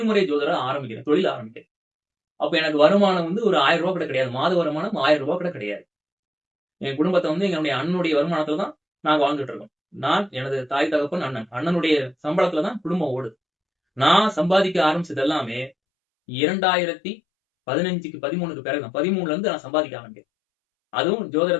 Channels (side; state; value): right; drops out; at 15.7 s